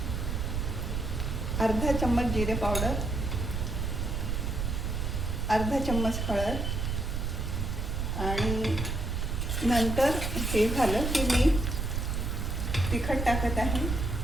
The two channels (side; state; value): right; noise; rumble, 1 dB below the sound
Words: अर्धा चम्मच जिरे पावडर, अर्धा चम्मच हळद आणि नंतर हे झालं की मी तिखट टाकत आहे